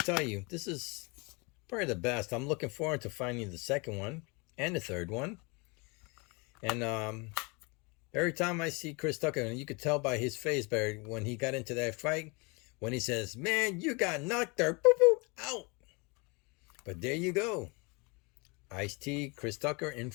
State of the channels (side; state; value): right; quieter; 29.2 dB